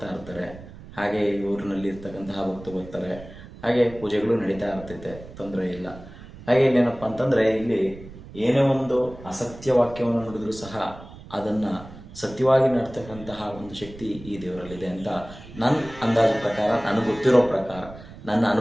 ಇರ್ತಾರೆ. ಹಾಗೆ ಈ ಊರಿನಲ್ಲಿ ಇರ್ತಕ್ಕಂತಹ ಭಕ್ತರು ಬರ್ತಾರೆ. ಹಾಗೆ ಪೂಜೆಗಳು ನಡೀತಾ ಇರ್ತೈತೆ, ತೊಂದರೆ ಇಲ್ಲ. ಹಾಗೆ ಇಲ್ಲೇನಪ್ಪ ಅಂತಂದರೆ, ಇಲ್ಲಿ ಏನೇ ಒಂದು ಅಸತ್ಯ ವಾಕ್ಯವನ್ನು ನುಡಿದ್ರೂ ಸಹ ಅದನ್ನು ಸತ್ಯವಾಗಿ ನಡ್ತಕ್ಕಂತಹ ಒಂದು ಶಕ್ತಿ ಈ ದೇವರಲ್ಲಿದೆ ಅಂತ ನನ್ನ ಅಂದಾಜು ಪ್ರಕಾರ, ನನಗೆ ಗೊತ್ತಿರೋ ಪ್ರಕಾರ, ನನ್ನ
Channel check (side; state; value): right; noise; rumble, 17 dB below the sound